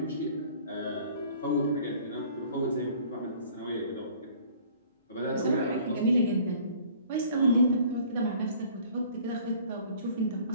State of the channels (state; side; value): inverted; both; correlation -0.52